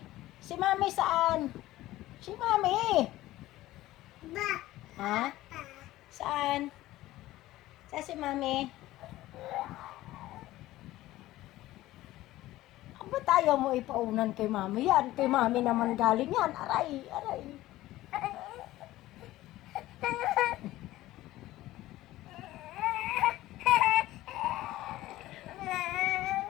Si Mami saan? Si Mami? Ha? Saan? Saan si Mami? Ba't tayo mo ipaunan kay Mami yan? Kay Mami naman galing yan. Aray, aray.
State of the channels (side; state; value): right; quieter; 16.2 dB